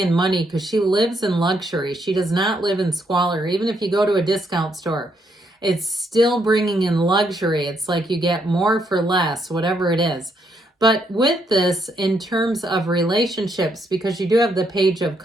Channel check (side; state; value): both; normal; correlation 0.75